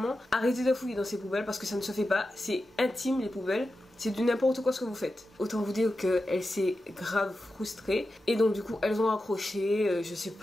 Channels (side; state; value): both; normal; correlation 0.91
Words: arrêtez de fouiller dans ses poubelles parce que ça ne se fait pas. C'est intime, les poubelles. C'est du n'importe quoi ce que vous faites. Autant vous dire qu'elle s'est grave frustrée. Et donc du coup elles ont accroché. Je sais